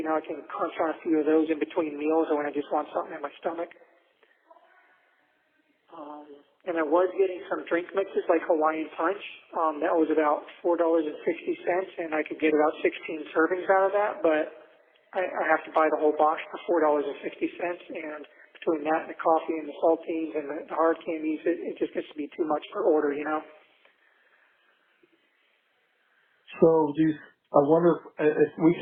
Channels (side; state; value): both; identical; correlation 1.00